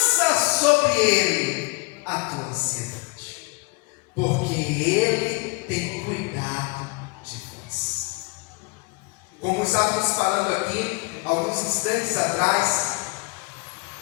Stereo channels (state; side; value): quieter; right; 29.1 dB